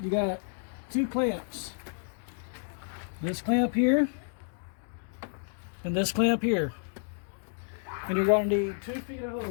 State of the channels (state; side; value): silent; right; digital silence